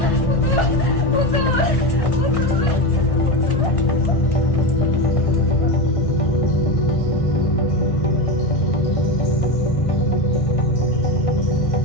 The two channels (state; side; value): late; right; 1.6 ms